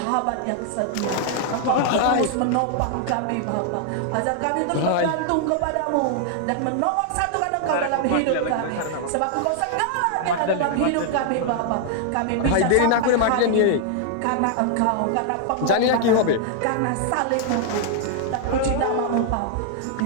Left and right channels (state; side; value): different; both; correlation 0.00